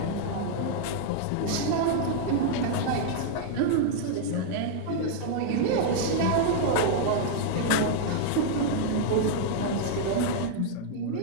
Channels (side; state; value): both; different; correlation -0.01